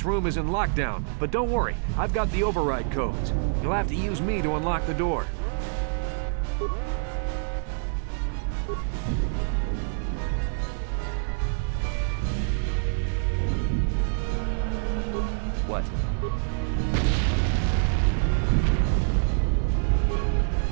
room is in lockdown. But don't worry, I've got the override codes. You'll have to use me to unlock the door. What?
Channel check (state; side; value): silent; left; digital silence